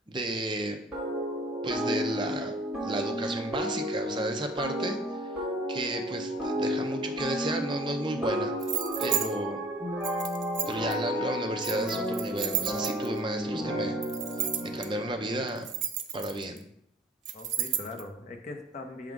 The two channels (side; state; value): both; normal; correlation 0.51